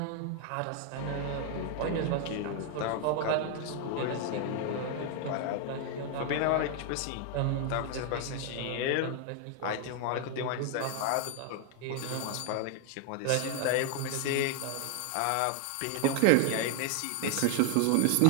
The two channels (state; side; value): different; both; correlation 0.00